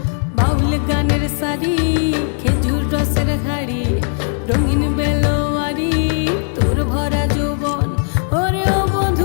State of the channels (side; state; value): right; silent; 68 dB below the other